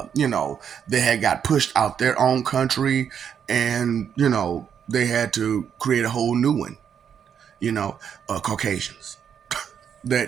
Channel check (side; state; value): left; quieter; 8.0 dB